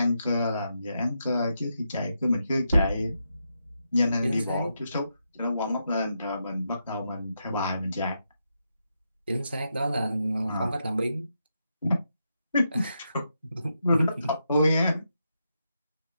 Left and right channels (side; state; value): both; inverted; correlation -0.84